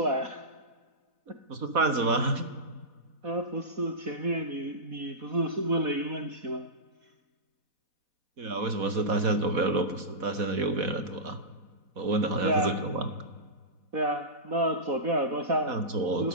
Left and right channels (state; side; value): late; left; 4.1 ms